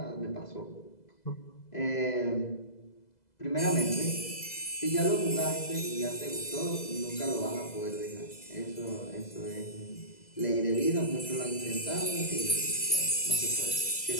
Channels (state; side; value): late; right; 2.0 ms